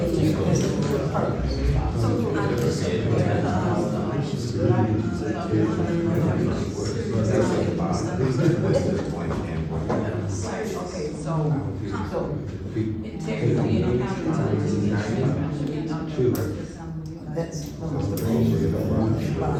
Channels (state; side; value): identical; both; correlation 1.00